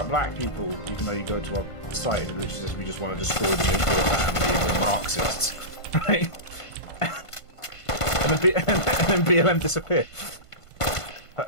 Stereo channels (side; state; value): right; late; 1.5 ms